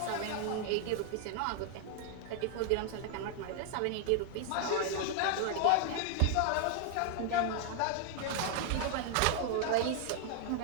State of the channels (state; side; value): different; both; correlation 0.00